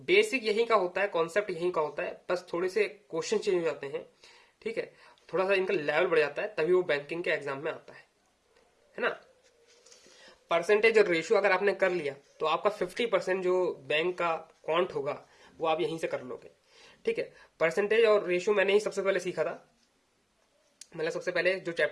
यहीं का होता है, कॉन्सेप्ट यहीं का होता है, बस थोड़े से क्वेश्चन चेंज हो जाते हैं, ठीक है, थोड़ा सा इनका लेवल बढ़ जाता है, तभी वो बैंकिंग के एग्जाम में आता है ना। परसेंटेज और रेशियो अगर आपने कर लिया तो आपका 50% जो बैंक का काउंट होगा वो आप यहीं से कर लोगे, ठीक है। परसेंटेज और रेशियो मैंने ही सबसे पहले सीखा था, मतलब सबसे पहले जो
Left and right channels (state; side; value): identical; both; correlation 1.00